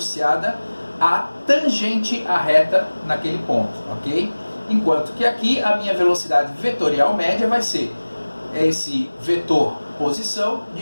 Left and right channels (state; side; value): inverted; both; correlation -1.00